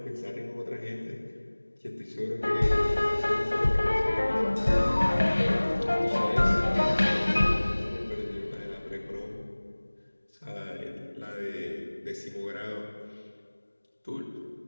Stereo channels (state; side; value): inverted; both; correlation -1.00